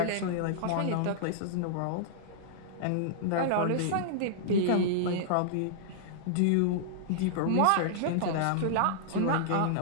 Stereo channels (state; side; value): different; both; correlation -0.02